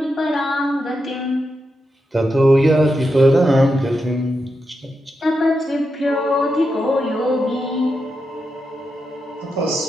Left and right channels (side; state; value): both; normal; correlation 0.86